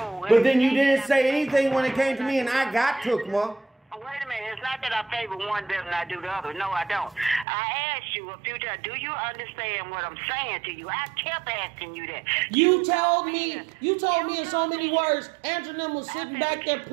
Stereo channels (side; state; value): left; drops out; at 7.5 s